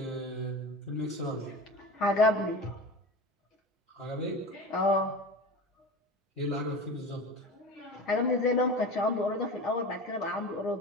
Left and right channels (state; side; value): normal; both; correlation 0.31